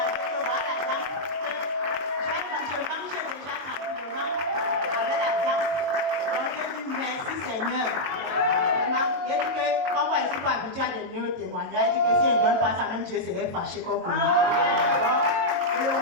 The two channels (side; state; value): left; late; 22 ms